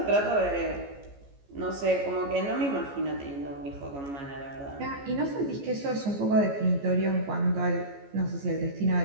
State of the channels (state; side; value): late; left; 14 ms